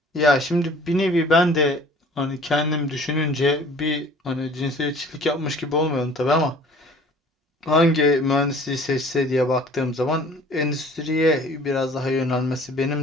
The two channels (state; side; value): normal; both; correlation 0.50